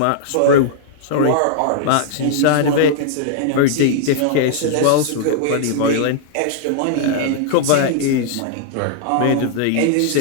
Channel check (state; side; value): different; both; correlation -0.01